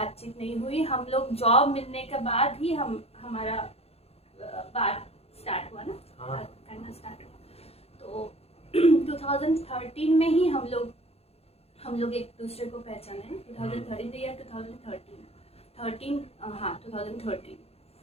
नहीं हुई। हम लोग जॉब मिलने के बाद ही हमारा बात स्टार्ट हुआ ना, बात करना स्टार्ट हुआ। तो 2013 में ही हम लोग एक दूसरे को पहचाने। 2013 या 2013, हाँ 2013।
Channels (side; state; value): right; late; 0.29 ms